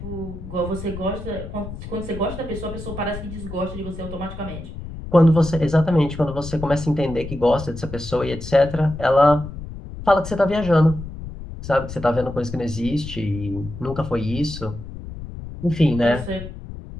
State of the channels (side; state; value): left; noise; rumble, 11 dB below the sound